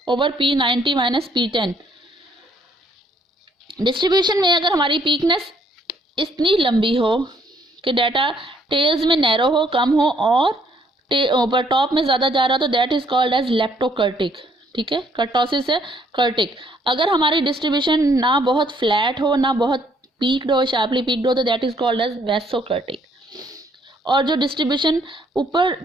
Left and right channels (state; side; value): normal; both; correlation 0.66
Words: 90 minus P10। Distribution में अगर हमारी पीकनेस इतनी लंबी हो कि डाटा टेल्स में नैरो हो, कम हो, और ऊपर टॉप में ज़्यादा जा रहा, तो that is called as leptokurtic, ठीक है। कर्टोसिस है कर्टिक। अगर हमारी डिस्ट्रीब्यूशन ना बहुत फ्लैट हो ना बहुत पीक्ड हो, शार्पली पीक्ड हो, तो दैट इज कॉल्ड एज वेसोकर्टिक। और जो डिस्ट्रीब्यूशन ऊपर